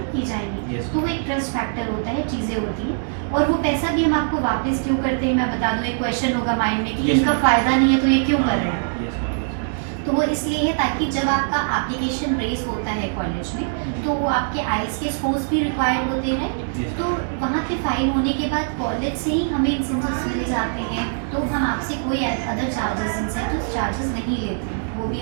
की जाएंगी। तो वो एक ट्रस्ट फैक्टर होता है, चीज़ें होती हैं। और वो पैसा भी हम आपको वापस क्यों करते हैं मैं बता दूँ, एक क्वेश्चन होगा माइंड में कि इनका फ़ायदा नहीं है तो ये क्यों कर रहे हैं। तो वो इसलिए है ताकि जब आपका एप्लीकेशन रेस होता है कॉलेज में तो आपके आइल्स के स्कोर्स भी रिक्वायर्ड होते हैं, तो वहाँ पे फाइल होने के बाद कॉलेज से ही हमें इंसेंटिव्स मिल जाते हैं, तो हम आपसे कोई अदर चार्जेस इंसेंटिव चार्जेस नहीं लेते हैं, वो भी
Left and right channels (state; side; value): silent; left; 64 dB below the other